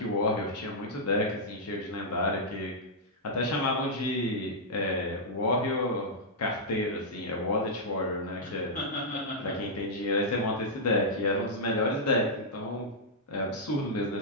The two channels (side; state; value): both; normal; correlation -0.08